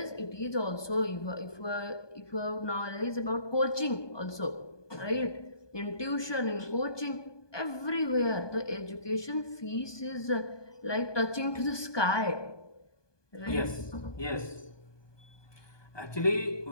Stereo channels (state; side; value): late; right; 1.2 ms